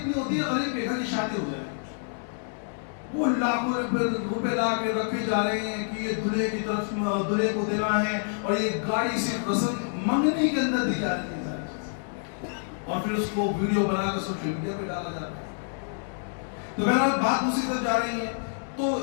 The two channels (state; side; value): silent; right; digital silence